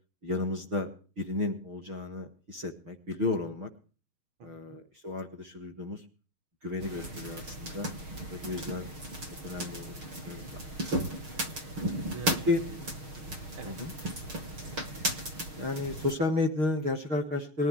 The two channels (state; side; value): late; left; 6.4 ms